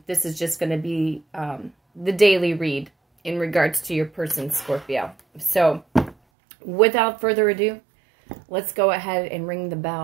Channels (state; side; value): drops out; left; at 6.2 s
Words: This is just going to be the daily read in regards to your person, Scorpio. So without further ado, let's go ahead and ring the